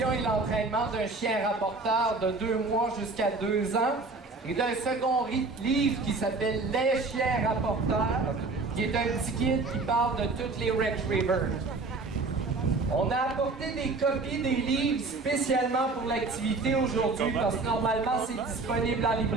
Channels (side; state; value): left; quieter; 3.7 dB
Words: et l'entraînement d'un chien rapporteur de 2 mois jusqu'à 2 ans, et d'un second livre qui s'appelle Les chiens rapporteurs, qui est un petit guide qui parle de toutes les retrievers. On a apporté des copies des livres spécialement pour l'activité aujourd'hui parce que normalement c'est disponible en